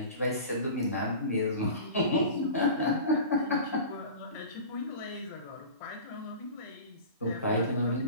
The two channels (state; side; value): inverted; both; correlation -0.35